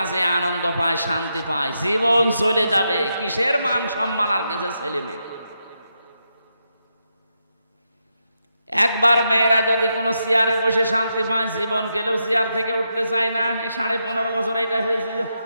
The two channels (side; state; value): both; inverted; correlation -0.84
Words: আনন্দ পায়, শান্তি পায়, জীবন চলে যাবে। কিসের মান সম্মান আর কিসের ছেলে মেয়ে? একবার মেয়েরা যদি কোনো চেয়ারে বসে শান্তি পায়, জীবন গেলেও চেয়ার থেকে উঠতে চায় না। 15.5 বছর এটা হয়েছিল,